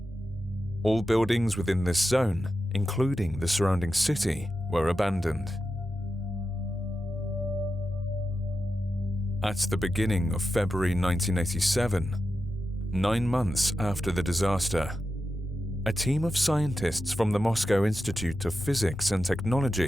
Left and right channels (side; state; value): both; normal; correlation 0.90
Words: All buildings within this zone, including the surrounding city, were abandoned. At the beginning of February 1987, 9 months after the disaster, a team of scientists from the Moscow Institute of Physics and